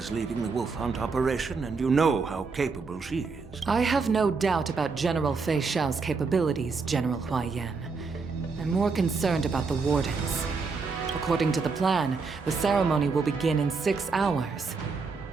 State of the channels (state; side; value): quieter; left; 4.6 dB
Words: leading the wolf hunt operation, and you know how capable she is. I have no doubt about General Fei Shao's capabilities, General Hua Yan. I'm more concerned about the wardens. According to the plan, the ceremony will begin in 6 hours.